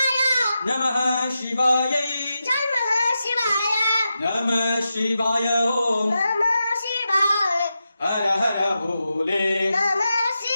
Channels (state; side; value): inverted; both; correlation -0.89